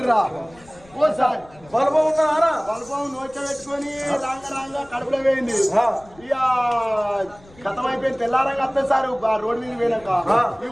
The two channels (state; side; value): noise; left; rumble, 26 dB below the sound